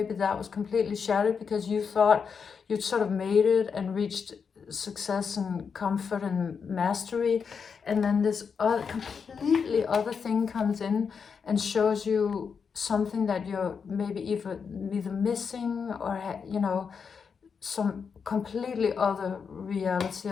that was completely shattered because you thought you'd sort of made it and reached success and comfort and mastery, and then this completely other thing comes in and shows you something that you're maybe either missing, or some completely other reality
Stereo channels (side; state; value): right; quieter; 6.1 dB